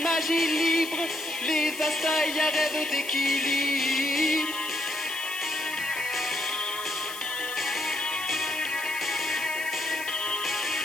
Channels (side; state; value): left; noise; hiss, 12 dB below the sound